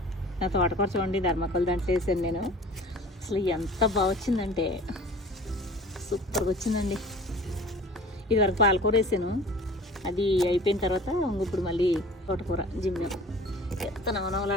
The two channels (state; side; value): normal; both; correlation 0.44